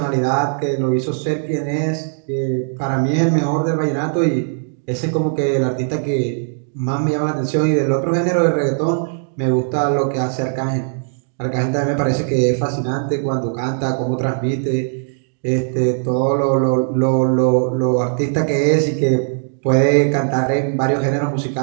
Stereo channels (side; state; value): left; silent; digital silence